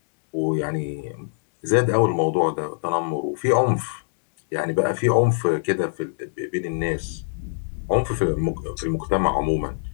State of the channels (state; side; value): silent; right; digital silence